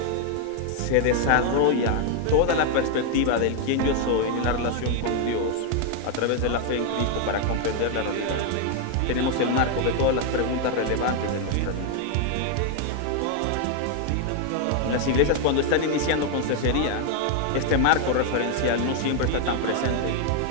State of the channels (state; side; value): different; both; correlation 0.00